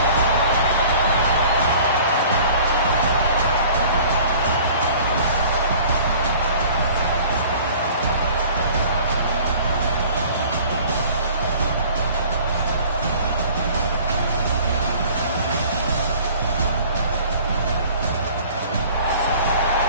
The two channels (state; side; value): inverted; both; correlation -0.48